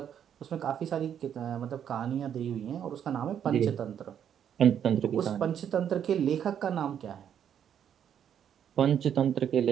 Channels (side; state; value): left; quieter; 9.0 dB